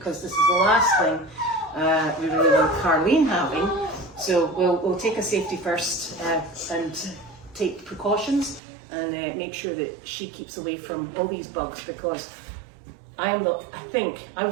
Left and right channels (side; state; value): left; drops out; at 8.6 s